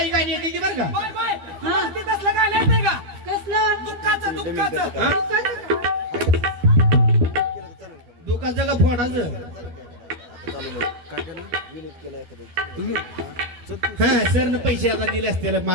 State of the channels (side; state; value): left; late; 12 ms